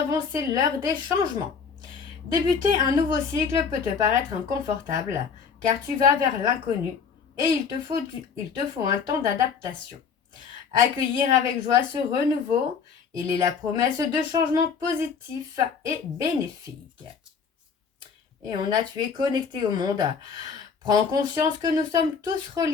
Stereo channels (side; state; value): right; quieter; 6.1 dB